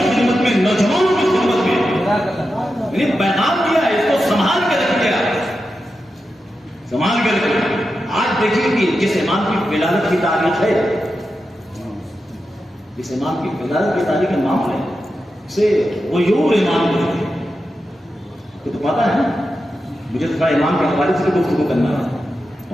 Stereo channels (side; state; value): both; normal; correlation 0.90